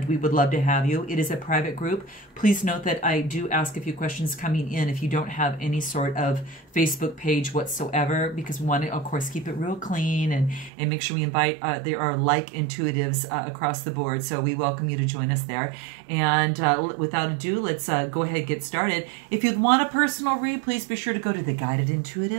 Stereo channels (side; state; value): left; drops out; at 10.7 s